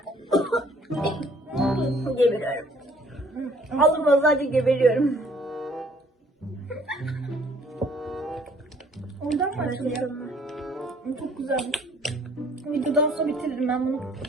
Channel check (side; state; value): both; normal; correlation 0.59